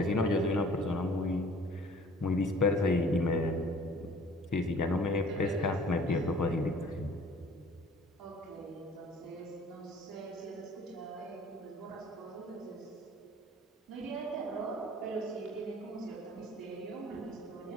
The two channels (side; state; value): both; normal; correlation 0.50